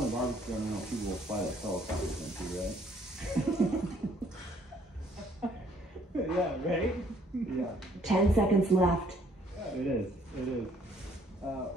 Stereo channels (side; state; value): both; normal; correlation 0.63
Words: barbecue I know people will fly like helicopters into, right? Yeah, right? Yeah. 10 seconds left. It is. It is.